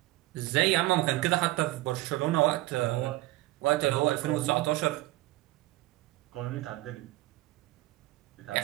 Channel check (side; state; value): left; quieter; 18.8 dB